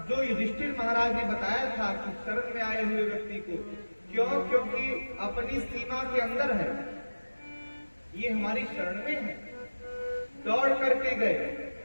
जो युधिष्ठिर महाराज ने बताया था कि शरण में आए हुए व्यक्ति को, क्यों? क्योंकि अपनी सीमा के अंदर है, ये हमारी शरण में है। दौड़ करके गए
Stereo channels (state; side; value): inverted; both; correlation -1.00